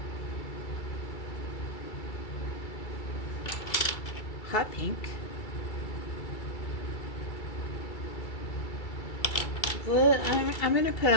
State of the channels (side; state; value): right; late; 2.3 ms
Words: Hot Pink, I'm gonna put